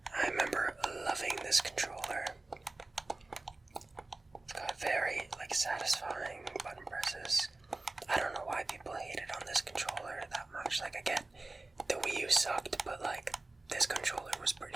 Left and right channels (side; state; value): left; quieter; 3.1 dB